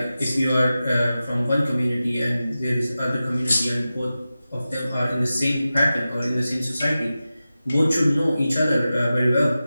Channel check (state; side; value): inverted; both; correlation -0.94